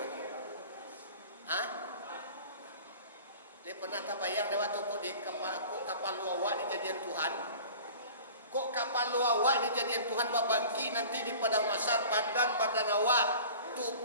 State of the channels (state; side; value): inverted; both; correlation -0.42